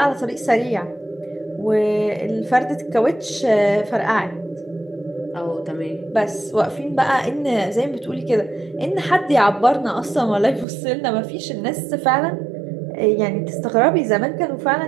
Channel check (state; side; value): drops out; left; at 10.7 s